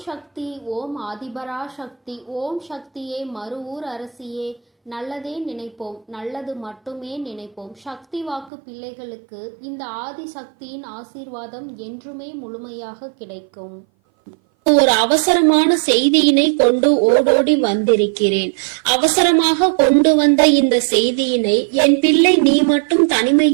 சக்தி, ஓம் ஆதிபரா சக்தி, ஓம் சக்தியே, மறுவூர் அரசியே, நல்லதே நினைப்போம், நல்லது மட்டுமே நினைப்போம். சக்தி வாக்கு பிள்ளைகளுக்கு இந்த ஆதி சக்தியின் ஆசீர்வாதம் என்றுமே முழுமையாக கிடைக்கும். ஒரு அவசரமான செய்தியினை கொண்டு ஓடோடி வந்திருக்கிறேன். அவசரமாக கொண்டு வந்த இந்த செய்தியினை என் பிள்ளை நீ மட்டும்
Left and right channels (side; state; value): left; drops out; at 8.5 s